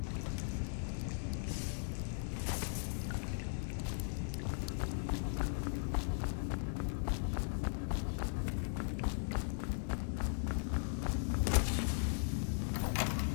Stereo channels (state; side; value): silent; right; digital silence